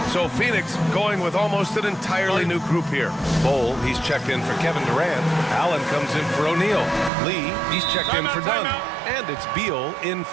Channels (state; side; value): drops out; left; at 7.1 s